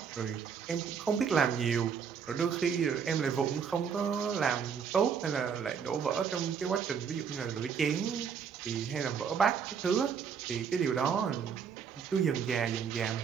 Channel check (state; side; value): quieter; left; 6.8 dB